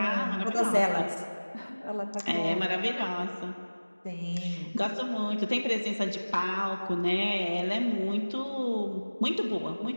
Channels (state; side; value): inverted; both; correlation -1.00